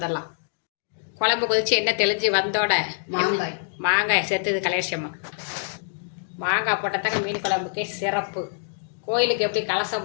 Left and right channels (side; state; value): right; silent; digital silence